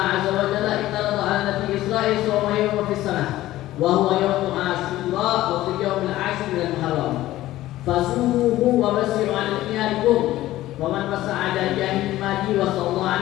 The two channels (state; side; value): quieter; right; 15.4 dB